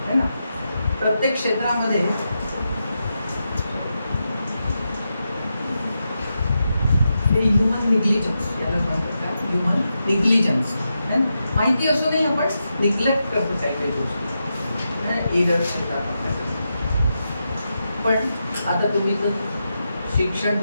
है ना. प्रत्येक क्षेत्रामध्ये हे ह्युमन निग्लिजन्स याला म्हणतात. काय ह्युमन निग्लिजन्स, माहिती असूनही आपण निग्लेक्ट करतो काही काही गोष्टी, एरर्स येतात आपल्याकडे. पण आता तुम्ही जर शिक्षण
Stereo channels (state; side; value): inverted; both; correlation -0.87